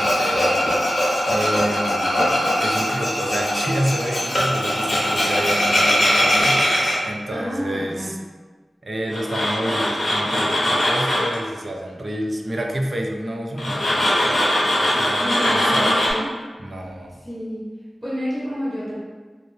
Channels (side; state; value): both; normal; correlation 0.93